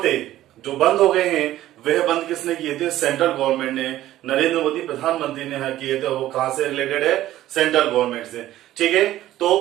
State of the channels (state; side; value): quieter; left; 14.1 dB